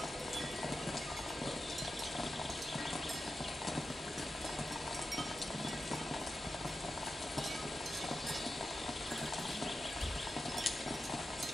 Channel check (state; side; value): normal; both; correlation 0.91